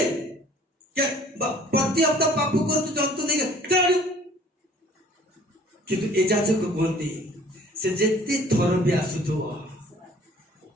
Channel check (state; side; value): normal; both; correlation 0.52